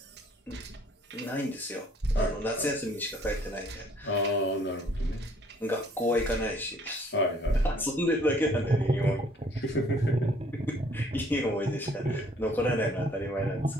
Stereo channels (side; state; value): both; normal; correlation 0.60